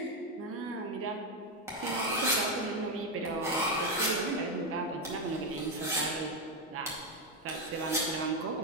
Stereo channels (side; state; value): both; normal; correlation 0.07